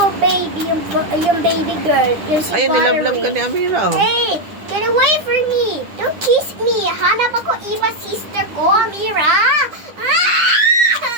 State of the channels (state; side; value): late; left; 9.9 ms